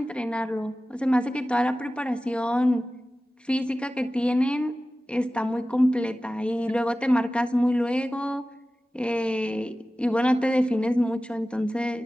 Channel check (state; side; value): normal; both; correlation 0.96